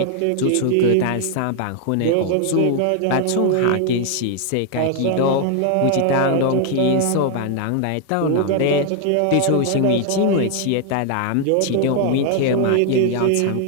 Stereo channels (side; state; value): both; different; correlation 0.00